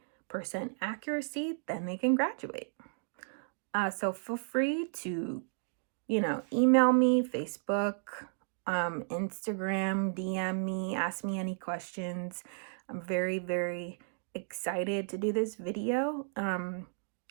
accuracy, then they can graduate. So feel free to, email me, Facebook, Instagram, DM me, ask me any questions. I'm very, very excited to do this video.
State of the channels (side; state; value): left; silent; digital silence